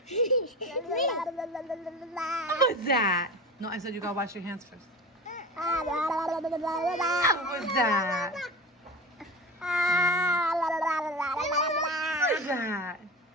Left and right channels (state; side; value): normal; both; correlation 0.31